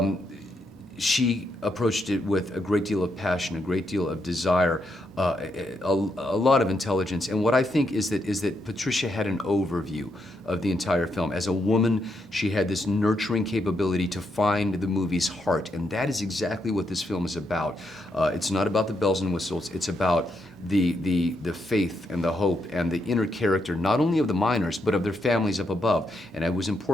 She approached it with a great deal of passion, a great deal of desire, a lot of intelligence. And what I think is that Patricia had an overview of the entire film. As a woman, she had this nurturing capability to find the movie's heart, and that is exactly what this film is about. It's not about the bells and whistles. It's about the faith and the hope and the inner character, not only of the miners, but of their families up above. And it was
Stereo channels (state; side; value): normal; both; correlation 0.80